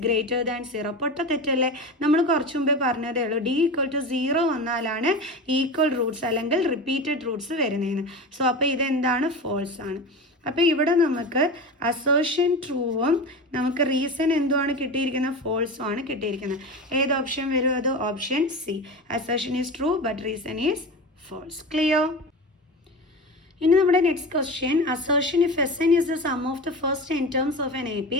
greater than 0. പൊട്ട തെറ്റല്ലേ? നമ്മൾ കുറച്ച് മുമ്പേ പറഞ്ഞതേ ഉള്ളൂ, d = 0 വന്നാലാണ് ഈക്വൽ റൂട്ട്സ് അല്ലെങ്കിൽ റിപ്പീറ്റഡ് റൂട്ട്സ് വരുന്നതെന്ന്. സോ അപ്പോൾ ഇതെന്താണ്? ഫോൾസ് ആണ്. അപ്പോൾ ഇവിടെ നമുക്ക് അസേർഷൻ ട്രൂവും നമുക്ക് റീസൺ എന്തുമാണ് കിട്ടിയിരിക്കുന്നത്? ഫോൾസും ആണ് കിട്ടിയിരിക്കുന്നത്. ഏത് ഓപ്ഷൻ വരും അത്? Option C. Assertion is true but reason is false. Clear? ഇനി നമ്മുടെ next question, assertion if Sn is the sum of the first n terms of an AP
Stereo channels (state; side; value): normal; both; correlation 0.27